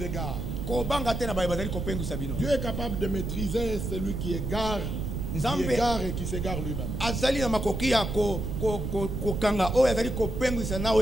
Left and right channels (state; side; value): noise; right; rumble, 4 dB below the sound